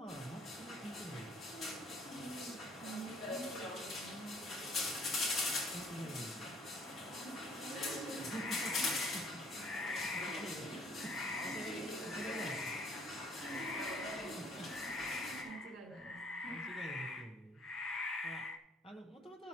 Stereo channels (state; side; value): normal; both; correlation 0.59